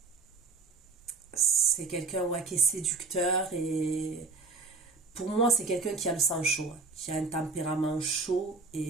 C'est quelqu'un ouais, qui est séducteur et pour moi, c'est quelqu'un qui a le sang chaud, hein, qui a un tempérament chaud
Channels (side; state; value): left; quieter; 4.1 dB